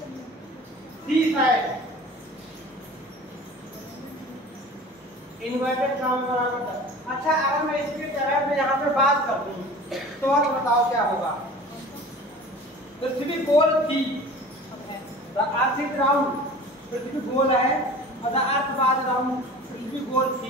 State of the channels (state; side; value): normal; both; correlation 0.41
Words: सी साइड इन्वर्टेड कॉमा बराबर था। अच्छा अगर मैं इसके तरह में यहाँ पे बात कर दूं तो आप बताओ क्या होगा। पृथ्वी गोल थी, द अर्थ इज राउंड, पृथ्वी गोल है और द अर्थ वाज राउंड, पृथ्वी गोल